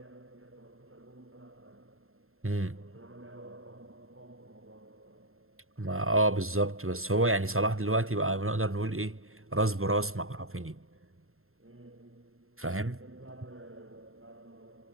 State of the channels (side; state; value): left; late; 0.61 ms